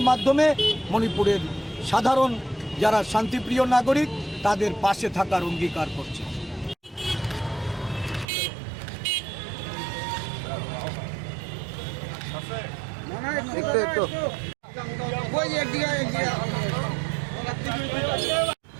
মাধ্যমে মণিপুরের সাধারণ যারা শান্তিপ্রিয় নাগরিক তাদের পাশে থাকার অঙ্গীকার করছে।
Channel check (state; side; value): drops out; left; at 8.2 s